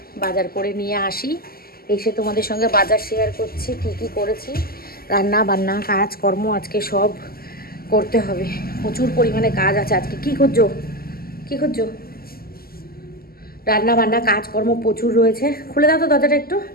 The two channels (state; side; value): late; right; 0.43 ms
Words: বাজার করে নিয়ে আসি, এসে তোমাদের সঙ্গে বাজার শেয়ার করছি, কি কি করেছি। রান্না বান্না কাজকর্ম আজকে সব করতে হবে, প্রচুর পরিমাণে কাজ আছে আজকে। কি করছো কি করছো? রান্না বান্না কাজকর্ম প্রচুর রয়েছে। খুলে দাও তো দরজাটা একটু।